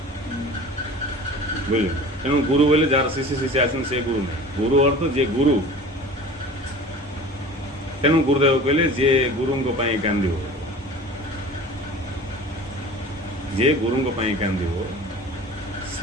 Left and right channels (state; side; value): normal; both; correlation 0.41